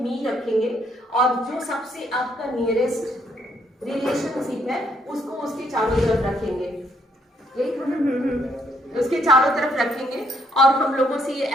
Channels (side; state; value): both; normal; correlation 0.71